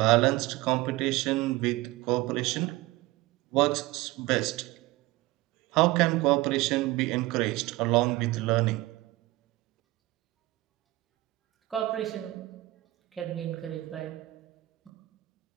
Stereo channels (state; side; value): quieter; left; 19.1 dB